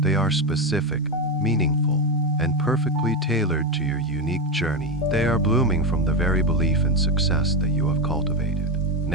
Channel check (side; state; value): both; normal; correlation 0.13